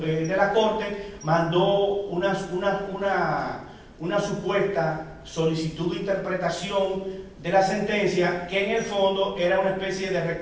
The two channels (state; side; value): identical; both; correlation 1.00